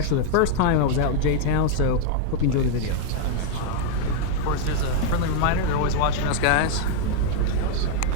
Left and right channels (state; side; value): different; both; correlation 0.00